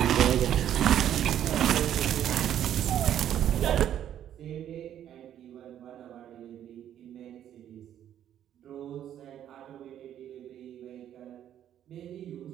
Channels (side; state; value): left; quieter; 10.6 dB